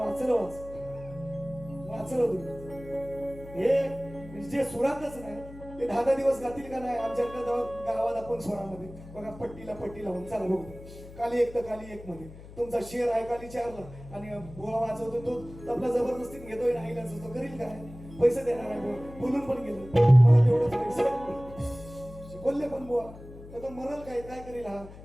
वाचलं तुम्ही. हे जे सुरातच नाही ते 10 दिवस गातील का नाही. आमच्या गावात आपण स्वरामध्ये बघा पट्टी लावून चला बघू. काली 1 तर काली 1 मध्ये तुमचा शेर आहे काली 4ला आणि बोळा वाजवतो तो आपला जबरदस्तीने घेतोय नाही तो करील काय. पैसे देणार आहे बोलून पण गेलो मला तेवढंच पैसे बोलले पण बुवा तर तो मरल काय करेल. हा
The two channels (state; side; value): noise; left; hum, 16 dB below the sound